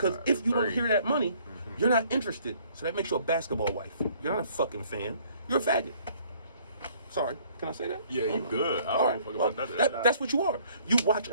if you don't hear that money, you're not interested. So that makes you a basketball wife. You're not a fucking fan. You're a faggot. Sorry, can I say that? Yeah, you good. I All don't right. fuck Well, about that. that's what you are. You watch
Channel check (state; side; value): inverted; both; correlation -0.60